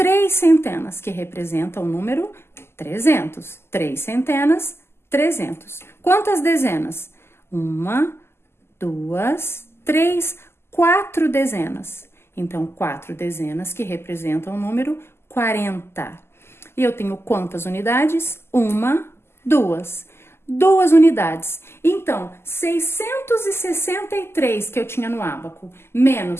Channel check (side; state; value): right; late; 0.12 ms